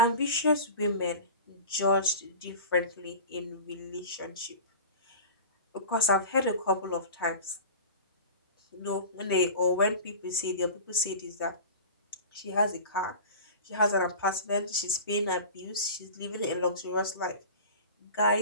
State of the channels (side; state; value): both; inverted; correlation -0.35